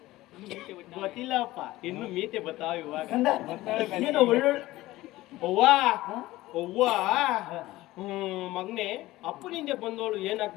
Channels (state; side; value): quieter; right; 17.5 dB